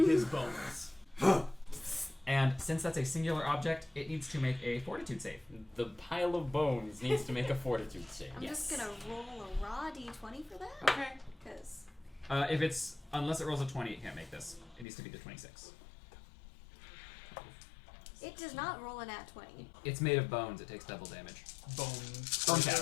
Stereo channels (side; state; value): right; drops out; at 14.9 s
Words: his bones. And since that's a singular object, it needs to make a fortitude save. The pile of bones needs to make a fortitude save. I'm just gonna roll a raw d20 for that. Okay. Because Unless it rolls a 20, it can't make this. It needs to be the 26. it does not roll a nat 20. It's made of bones, it takes double damage. Bone